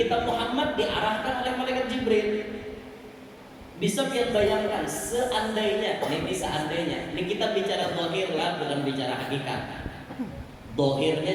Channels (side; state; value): both; identical; correlation 1.00